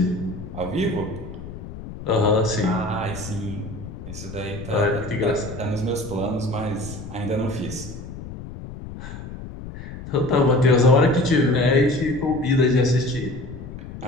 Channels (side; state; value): left; noise; rumble, 11 dB below the sound